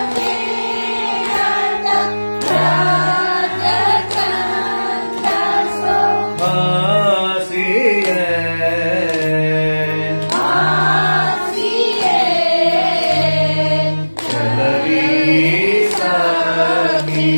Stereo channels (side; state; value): both; inverted; correlation -1.00